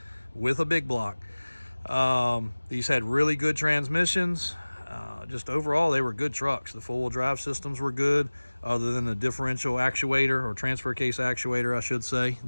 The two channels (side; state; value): both; inverted; correlation -1.00